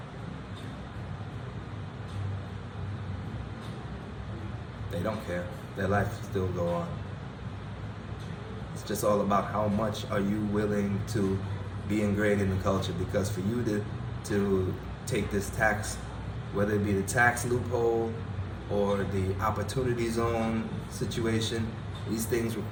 They don't care. Their life still go on. It's just all about how much are you willing to be ingrained in the culture. Because for you to take this tax, whether it be the tax loophole or the opportunity zone situation, these things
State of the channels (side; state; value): both; identical; correlation 1.00